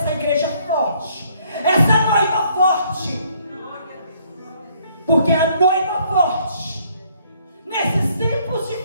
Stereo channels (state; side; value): inverted; both; correlation -0.65